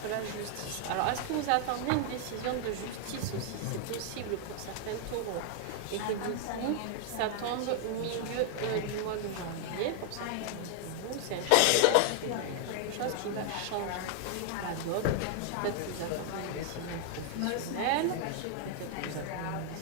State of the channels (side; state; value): both; different; correlation 0.00